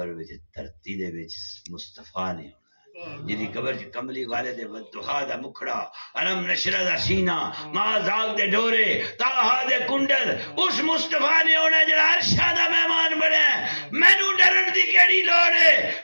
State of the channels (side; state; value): both; inverted; correlation -1.00